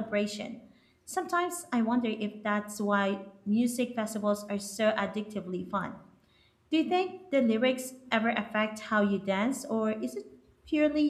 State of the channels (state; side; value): identical; both; correlation 1.00